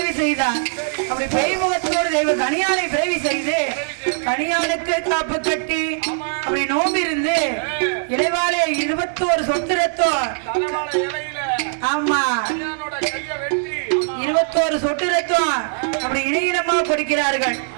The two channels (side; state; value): left; silent; 65 dB below the other